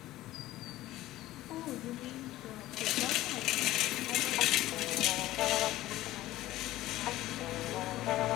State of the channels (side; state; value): right; quieter; 15.7 dB